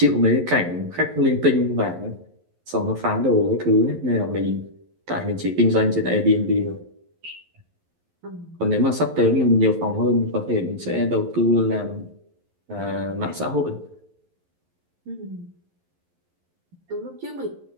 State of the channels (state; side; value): late; left; 11 ms